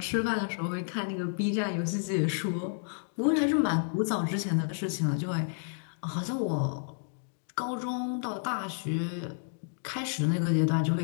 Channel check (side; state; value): right; silent; digital silence